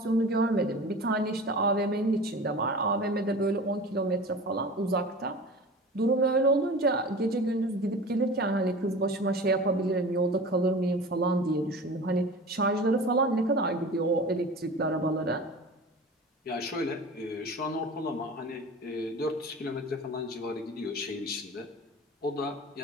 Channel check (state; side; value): normal; both; correlation 0.37